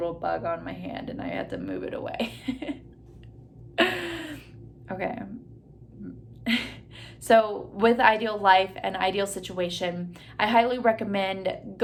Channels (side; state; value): both; identical; correlation 1.00